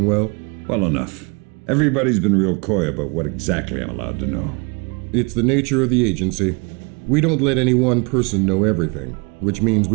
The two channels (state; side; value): quieter; left; 31.2 dB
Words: well? Well enough. Everybody's been real coy about what exactly I'm allowed to know. It's the nature of the agency. We don't let any one person know everything, which means